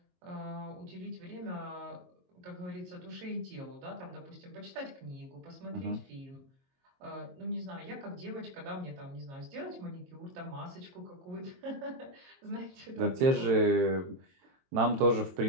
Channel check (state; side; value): late; left; 22 ms